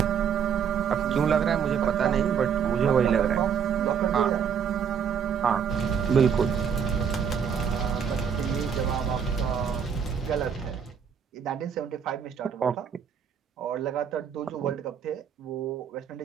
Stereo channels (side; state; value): left; quieter; 7.4 dB